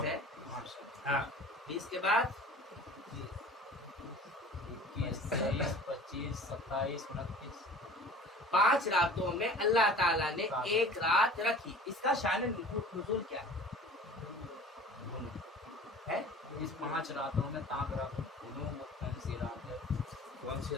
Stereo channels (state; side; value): normal; both; correlation 0.43